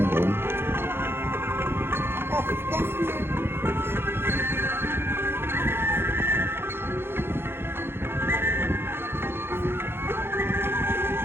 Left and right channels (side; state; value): left; late; 0.11 ms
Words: ងប្អូន